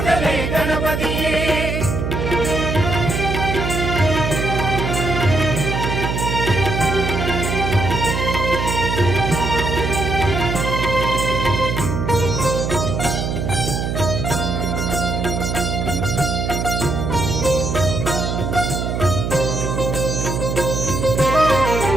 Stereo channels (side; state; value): right; noise; hum, 2 dB below the sound